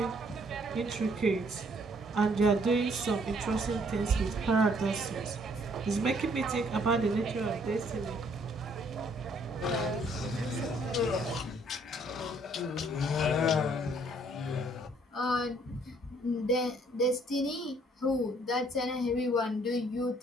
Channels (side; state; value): both; normal; correlation 0.64